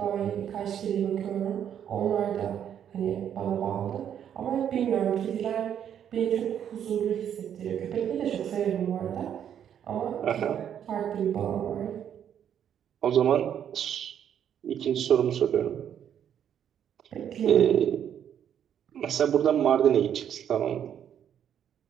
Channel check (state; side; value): quieter; left; 9.3 dB